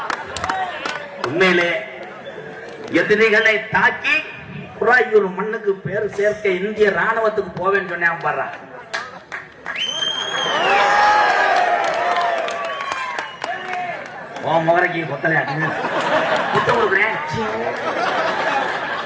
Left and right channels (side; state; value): both; identical; correlation 1.00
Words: உண்மையிலே எதிரிகளை தாக்கி குறாயூர் மண்ணுக்கு பேர் சேர்க்க இந்திய ராணுவத்துக்கு போவேன்னு சொன்னேன். பாரு, முகரைக்கு கொத்தலையா புத்த கொடுக்குறேன்.